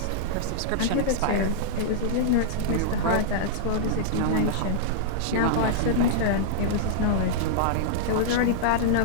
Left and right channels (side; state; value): both; different; correlation -0.02